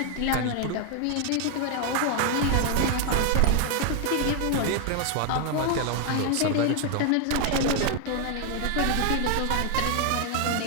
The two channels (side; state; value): both; different; correlation 0.00